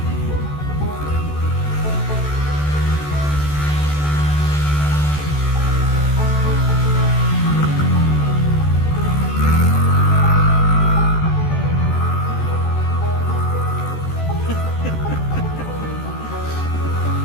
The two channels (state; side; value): late; right; 14 ms